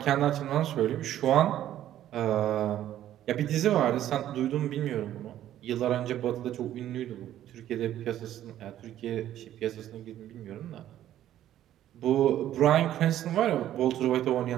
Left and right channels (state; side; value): quieter; left; 12.2 dB